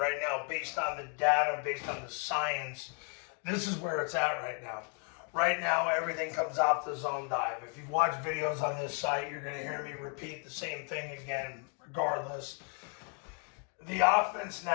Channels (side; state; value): right; quieter; 38.1 dB